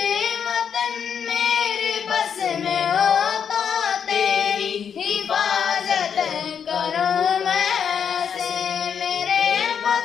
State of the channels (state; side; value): quieter; right; 7.5 dB